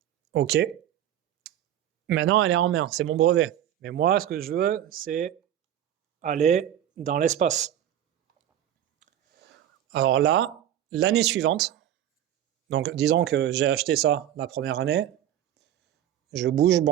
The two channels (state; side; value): quieter; left; 11.2 dB